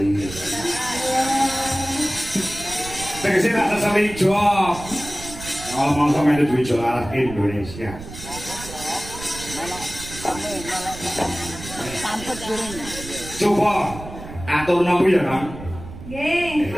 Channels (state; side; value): noise; right; rumble, 13 dB below the sound